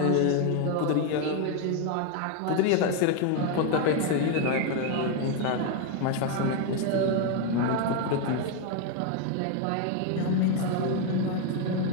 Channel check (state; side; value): different; both; correlation 0.01